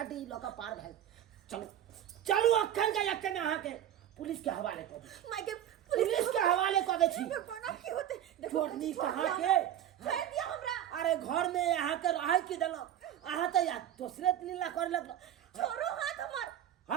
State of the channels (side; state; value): left; quieter; 10.9 dB